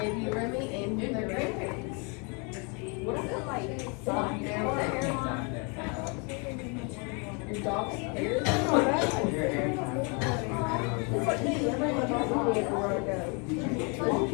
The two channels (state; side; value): quieter; right; 34.0 dB